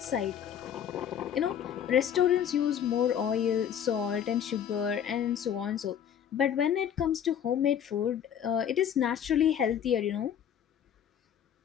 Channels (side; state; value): right; quieter; 9.0 dB